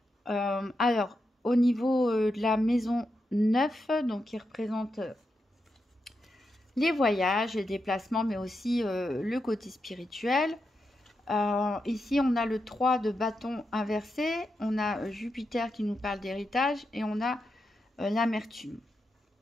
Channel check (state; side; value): normal; both; correlation 0.86